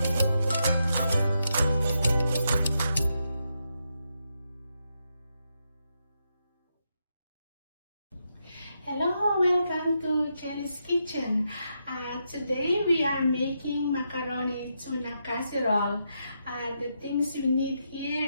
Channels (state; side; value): inverted; both; correlation -0.83